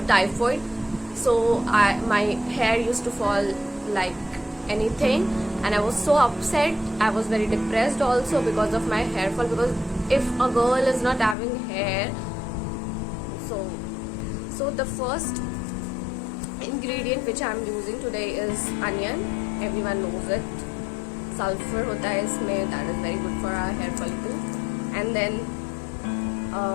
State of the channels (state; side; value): drops out; right; at 11.4 s